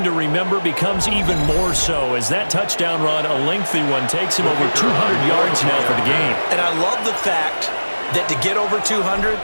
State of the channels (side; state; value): both; inverted; correlation -1.00